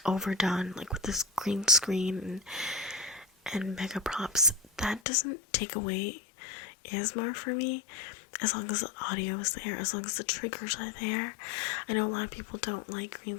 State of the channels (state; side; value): drops out; right; at 5.0 s